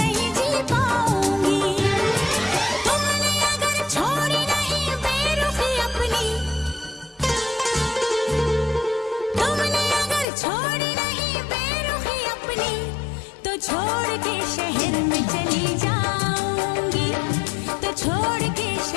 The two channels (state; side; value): drops out; right; at 10.2 s